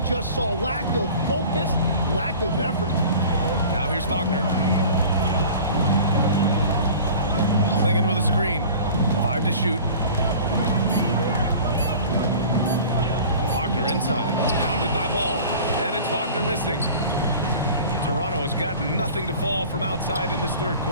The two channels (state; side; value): inverted; both; correlation -0.42